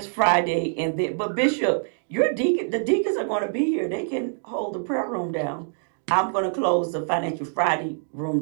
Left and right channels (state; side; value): silent; left; digital silence